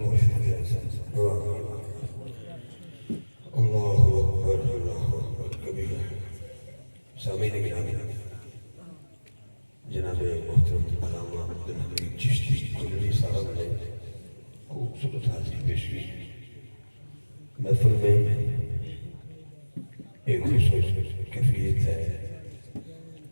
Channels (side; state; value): both; inverted; correlation -1.00